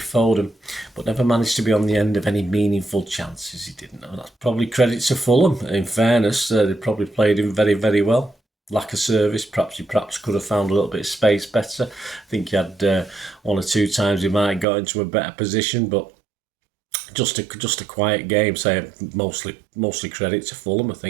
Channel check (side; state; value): left; drops out; at 14.7 s